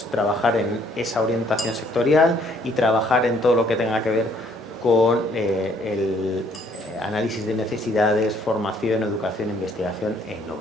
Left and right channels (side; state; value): both; normal; correlation 0.64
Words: trabajar en esa orientación sectorial y trabajar en todo lo que tenga que ver con el análisis de necesidades, formación, educación, investigación e